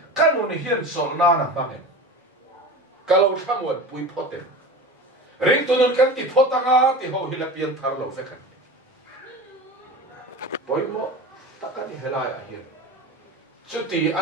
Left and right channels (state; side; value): normal; both; correlation 0.32